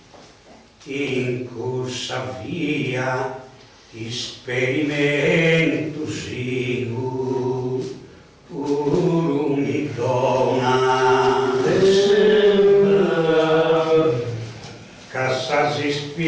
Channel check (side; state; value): both; identical; correlation 1.00